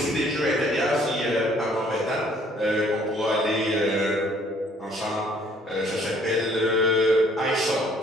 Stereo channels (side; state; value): both; normal; correlation 0.60